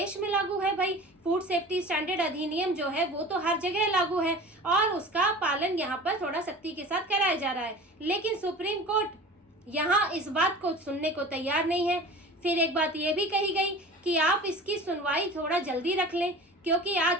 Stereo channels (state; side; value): normal; both; correlation 0.39